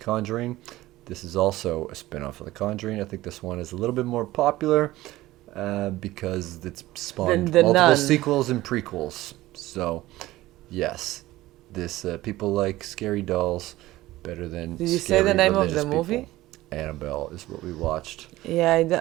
This is also a spin-off of The Conjuring. I think this one is a little bit more popular because it's spawned multiple sequels and prequels. So, yes, this people like scary dolls better than Did you say the name of the people. movie? Annabelle is what we watched. Yeah,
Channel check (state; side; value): quieter; left; 17.0 dB